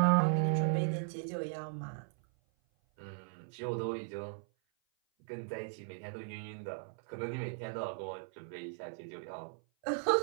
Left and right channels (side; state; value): left; silent; 53 dB below the other